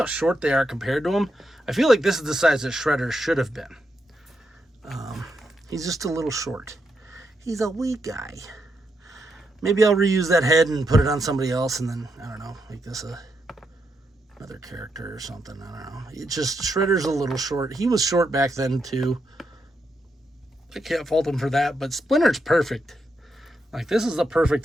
short they are compared to him. I feel like this is the size that Shredder should have been. He's just a little short. He's a wee guy. Maybe I'll reuse that head and put it on somebody else and then, I don't know, make this another character or something. I don't know. It's just, Shredder's a little short. He was short back then, too. I can't fault him for that, but Splinter's perfect. Like, this is the perfect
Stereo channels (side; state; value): both; normal; correlation 0.82